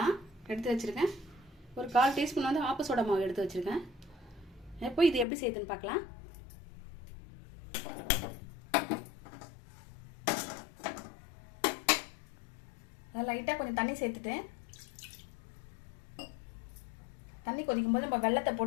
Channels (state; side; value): drops out; right; at 5.2 s